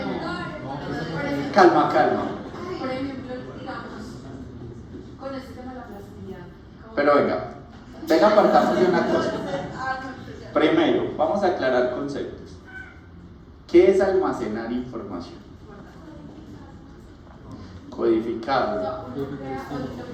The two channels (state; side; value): identical; both; correlation 1.00